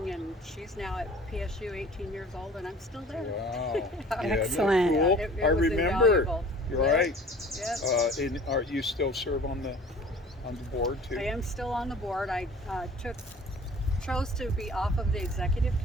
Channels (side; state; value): both; normal; correlation 0.46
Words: and she's now at PSU 18 years old, and I'm still there. Wow. Excellent. Yeah, cool? It I was remember. invaluable. You're Yes. right. Yes. And are you still serve on the board too? I am still on the board. I chose to be off of the executive